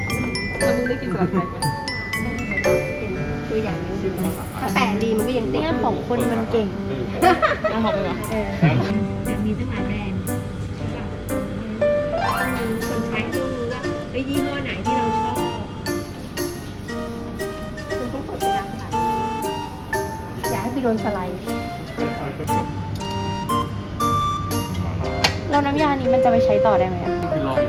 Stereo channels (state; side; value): identical; both; correlation 1.00